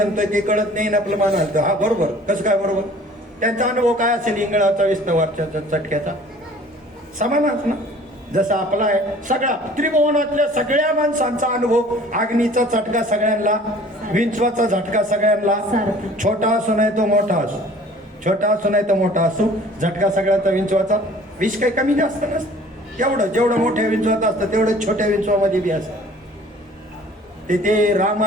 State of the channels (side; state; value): both; normal; correlation 0.50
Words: ते कळत नाही ना आपलं मान हलतं हा बरोबर कसं काय बरोबर त्यांचा अनुभव काय असेल इंगळाचा विस्तवारच्या चटक्याचा समानच ना जसा आपला आहे सगळा त्रिभुवनातल्या सगळ्या माणसांचा अनुभव अग्नीचा चटका सगळ्यांना विंचवाचा झटका सगळ्यांना छोटा असो नाही तो मोठा असो छोटा असो नाही तर मोठा असो झटका सगळ्यांचा विंचवाचा विष काही कमी जास्त नसतं एवढं जेवढं मोठ्या विंचवात असतं तेवढं छोट्या विंचवामध्ये बी असतं ते